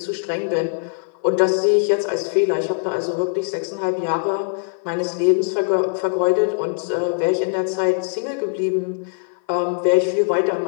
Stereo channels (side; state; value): right; silent; 56 dB below the other